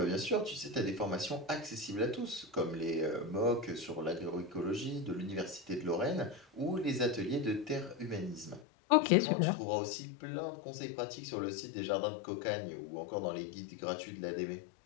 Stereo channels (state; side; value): drops out; right; at 8.7 s